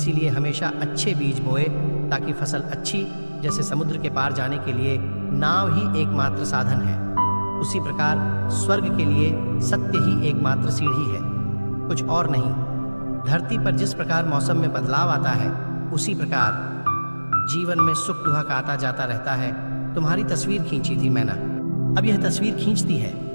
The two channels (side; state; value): both; inverted; correlation -1.00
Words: हमेशा अच्छे बीज बोए ताकि फसल अच्छी, जैसे समुद्र के पार जाने के लिए नाव ही एकमात्र साधन है, उसी प्रकार स्वर्ग के लिए सत्य ही एकमात्र सीढ़ी है, कुछ और नहीं। धरती पर जिस प्रकार मौसम में बदलाव आता है, उसी प्रकार जीवन में सुख दुख आता जाता रहता है। तुम्हारी तस्वीर खींची थी मैंने, अब यह तस्वीर खींचती है।